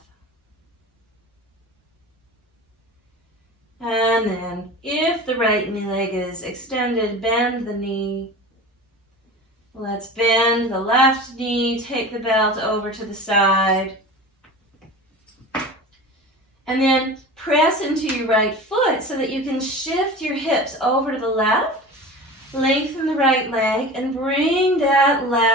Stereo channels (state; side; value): normal; both; correlation 0.34